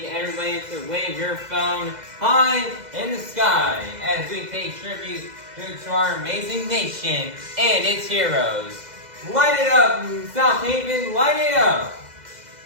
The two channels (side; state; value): left; late; 2.0 ms